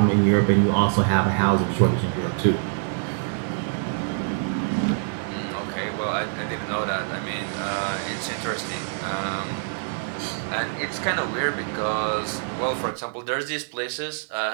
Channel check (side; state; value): left; silent; 60 dB below the other